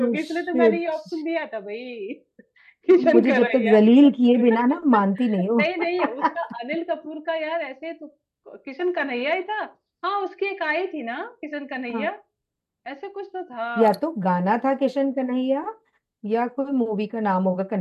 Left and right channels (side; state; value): both; identical; correlation 1.00